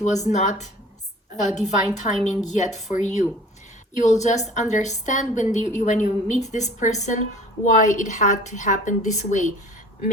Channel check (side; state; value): both; normal; correlation 0.47